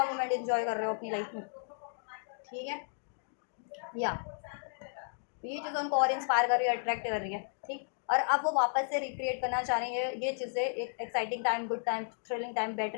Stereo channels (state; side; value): silent; right; digital silence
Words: मोमेंट इंजॉय कर रहे हो अपनी लाइफ में। ठीक है, या ये चीज़ें उनको और इंस्पायर कर रही है, अट्रैक्ट कर रही है। ठीक, और अब वो वापस से रिक्रिएट करना चाह रही है ये चीज़ें, एक exciting time, good time, thrilling time,